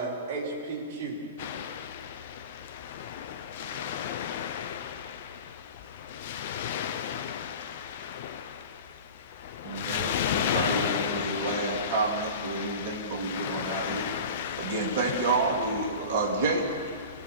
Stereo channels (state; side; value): inverted; both; correlation -0.35